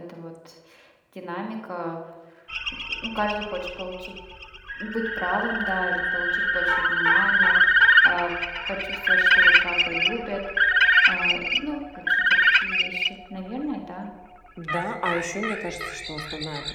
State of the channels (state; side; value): identical; both; correlation 1.00